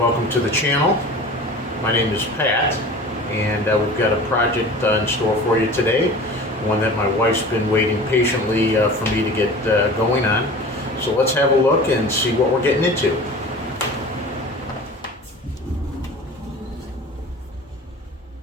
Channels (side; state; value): both; normal; correlation 0.39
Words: to the channel. My name is Pat, and we've got a project in store for you today, one that my wife's been waiting patiently for me to get going on. So let's have a look and see what we're getting into.